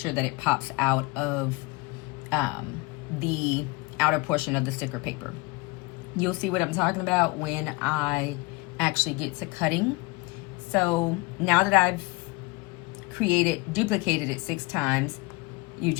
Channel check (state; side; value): quieter; right; 23.4 dB